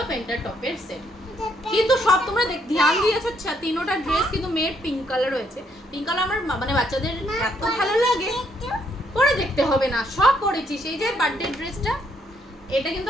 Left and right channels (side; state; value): both; normal; correlation 0.72